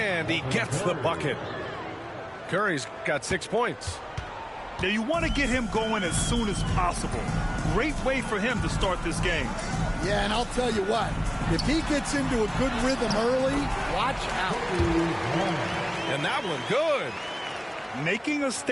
he gets the bucket. Curry's got 6 points. Now you want to get him going as soon as possible. Great way for him to start this game. Yeah, and I'll tell you what, if he gets into a good rhythm early, watch out. And that one good. Making a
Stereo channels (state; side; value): identical; both; correlation 1.00